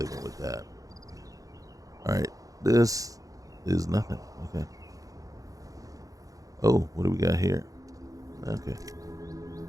with that. All right, this is nothing. Okay. Oh, what do we got here? Okay.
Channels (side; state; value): left; late; 0.17 ms